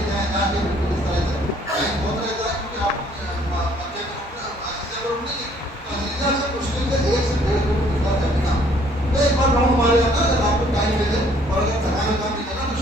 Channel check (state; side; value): normal; both; correlation 0.61